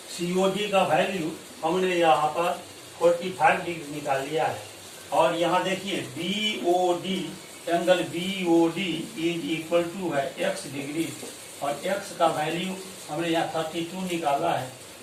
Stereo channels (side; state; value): both; identical; correlation 1.00